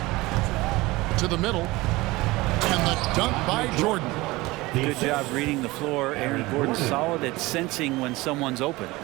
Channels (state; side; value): quieter; left; 20.8 dB